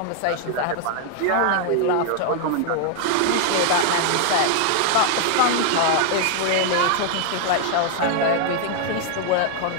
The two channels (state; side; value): different; both; correlation 0.00